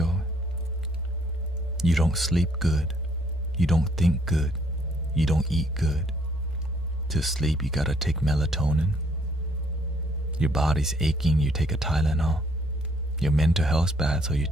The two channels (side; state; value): both; normal; correlation 0.66